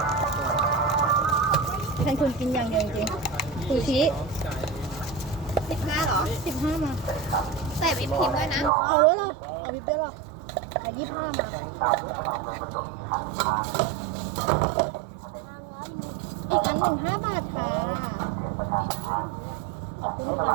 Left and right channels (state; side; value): drops out; left; at 8.7 s